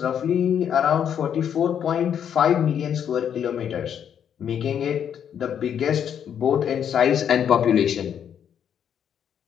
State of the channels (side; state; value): right; quieter; 8.7 dB